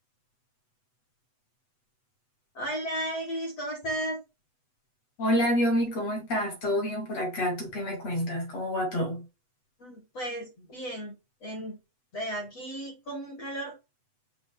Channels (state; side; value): late; right; 8.0 ms